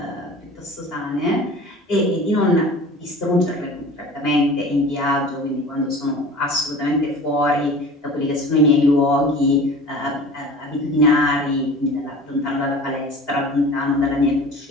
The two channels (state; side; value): normal; both; correlation 0.40